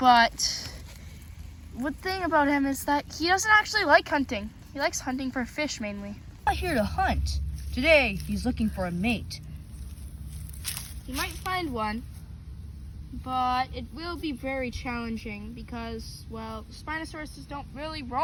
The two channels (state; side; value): identical; both; correlation 1.00